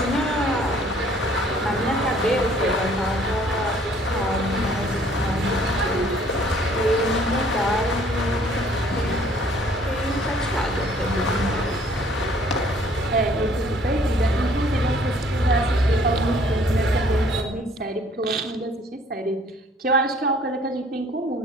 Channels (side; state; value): both; normal; correlation 0.58